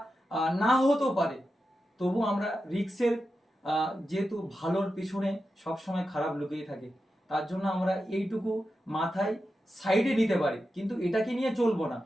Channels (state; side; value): normal; both; correlation 0.90